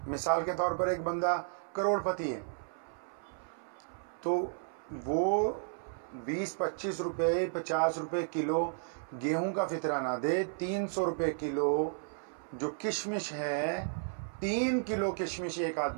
مثال کے طور پر ایک بندہ کروڑ پتی ہے تو وہ 20-25 روپے 50 روپے کلو گیہوں کا فطرہ نہ دے، 300 روپے کلو جو کشمش ہے، 3 کلو کشمش ایک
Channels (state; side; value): silent; left; 55 dB below the other